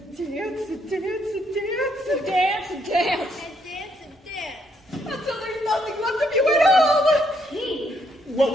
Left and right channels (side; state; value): both; normal; correlation 0.73